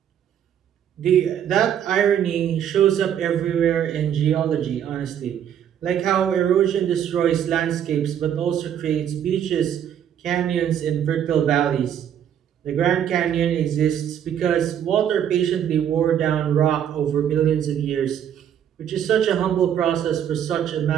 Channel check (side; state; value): left; quieter; 9.5 dB